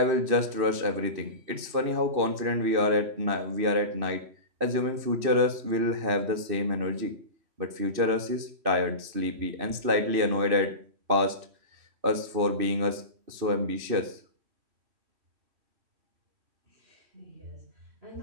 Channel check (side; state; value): left; late; 2.6 ms